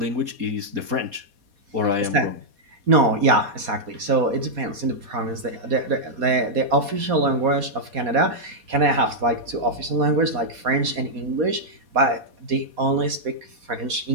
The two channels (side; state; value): left; late; 4.2 ms